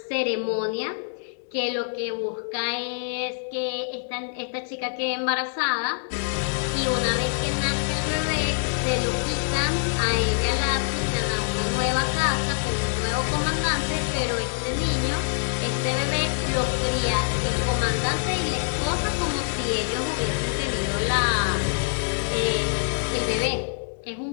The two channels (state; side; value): silent; right; 62 dB below the other